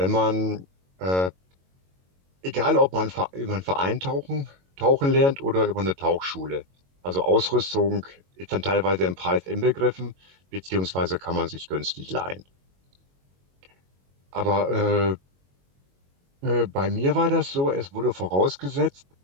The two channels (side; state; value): left; late; 22 ms